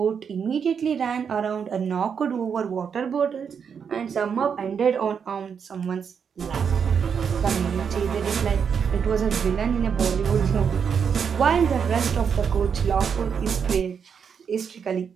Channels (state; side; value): quieter; left; 6.9 dB